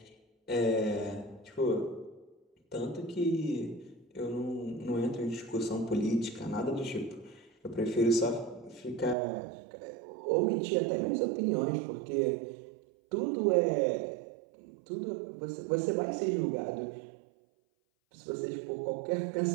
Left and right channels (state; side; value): drops out; left; at 9.2 s